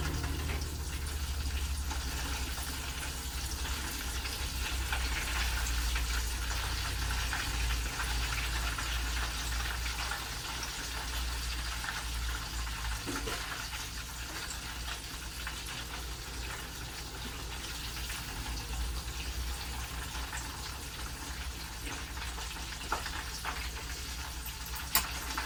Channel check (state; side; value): identical; both; correlation 1.00